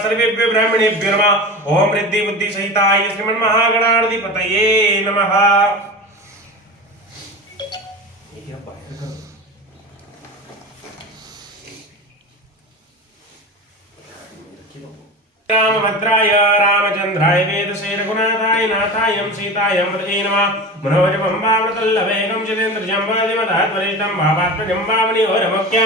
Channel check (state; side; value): normal; both; correlation 0.29